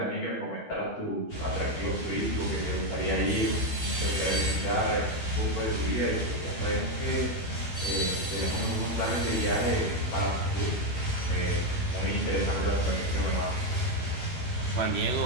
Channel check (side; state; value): right; late; 12 ms